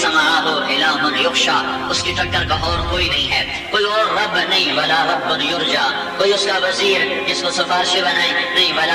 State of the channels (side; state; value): both; identical; correlation 1.00